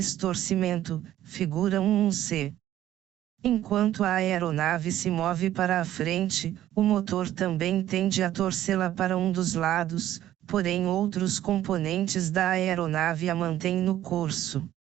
torcimento, figura 1C. Enquanto a aeronave se move para a frente, o motor também tende a torcê-la para um dos lados, porém outros componentes da aeronave a mantêm no curso.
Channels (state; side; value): quieter; left; 12.8 dB